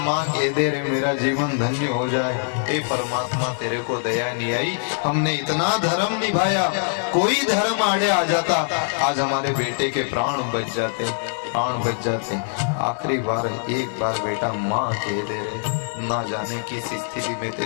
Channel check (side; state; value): right; silent; digital silence